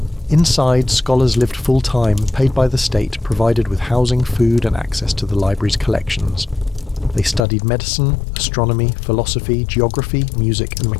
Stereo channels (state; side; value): drops out; right; at 7.5 s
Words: Inside, scholars lived full-time, paid by the state, provided with housing, food, and access to the library's collections. They studied medicine, astronomy, philosophy, geography, music, and